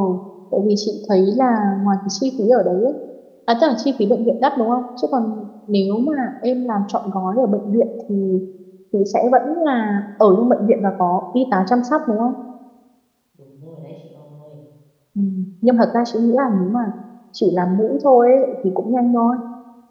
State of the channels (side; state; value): both; identical; correlation 1.00